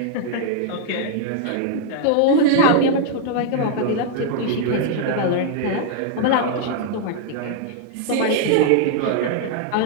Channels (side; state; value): both; different; correlation -0.01